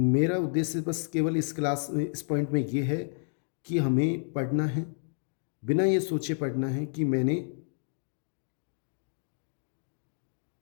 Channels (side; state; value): right; silent; digital silence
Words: उद्देश्य बस केवल इस पॉइंट में ये है कि हमें पढ़ना है, बिना ये सोचे पढ़ना है कि मैंने